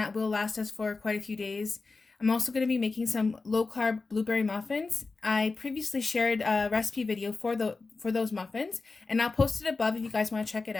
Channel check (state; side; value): quieter; right; 3.9 dB